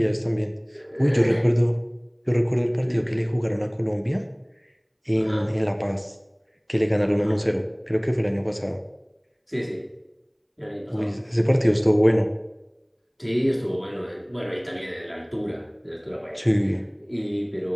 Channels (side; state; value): both; identical; correlation 1.00